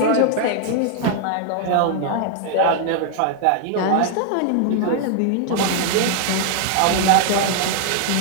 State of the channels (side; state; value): both; different; correlation 0.00